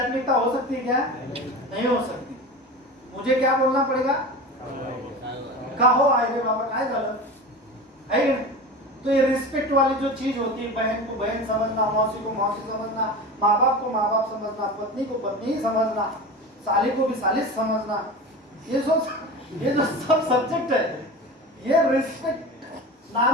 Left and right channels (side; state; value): both; normal; correlation 0.30